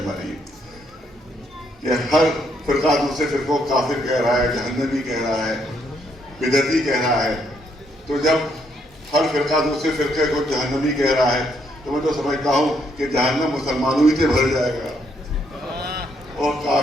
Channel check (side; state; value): both; normal; correlation 0.73